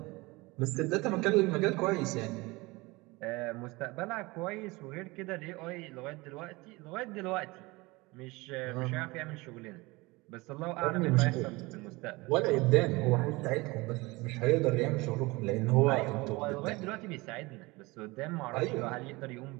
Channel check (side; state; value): left; quieter; 23.1 dB